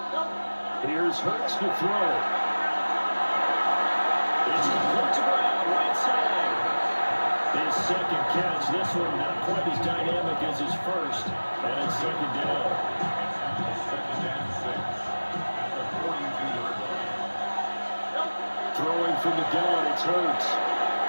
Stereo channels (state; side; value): inverted; both; correlation -1.00